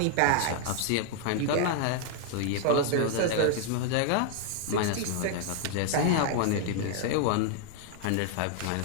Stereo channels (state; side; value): different; both; correlation 0.00